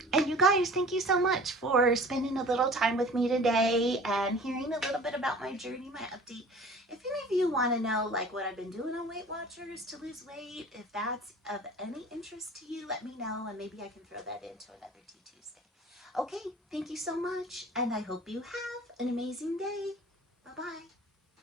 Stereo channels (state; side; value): normal; both; correlation 0.44